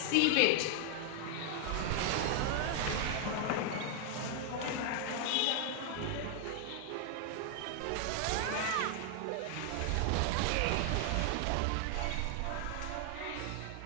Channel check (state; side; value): different; both; correlation 0.00